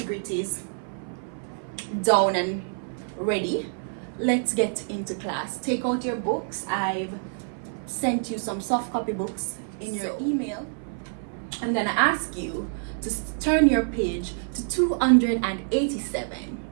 down and ready, let's get into class. Take out your books. I've sent you some soft copy books in your email. I'm gonna ask you to turn your page to 287.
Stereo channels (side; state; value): left; silent; 58 dB below the other